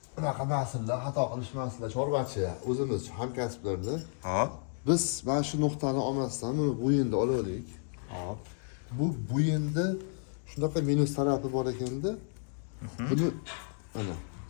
Bunaqa masalalar, xato qilishmaslar, chorvachi, o'zimiz hamkasblarda. Hop. Biz mana shu nuqtani olmasdan buni bo'yinda olaylik. Hop. Bu bo'yinda shunaqa minus tarafi bor ekanda, buni mana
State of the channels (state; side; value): silent; right; 56 dB below the other